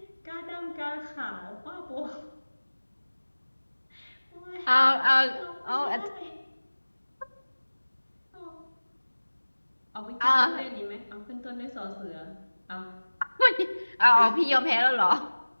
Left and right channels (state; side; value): inverted; both; correlation -1.00